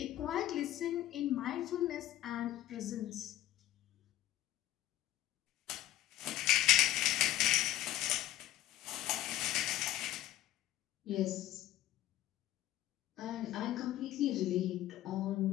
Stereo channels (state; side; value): quieter; right; 14.1 dB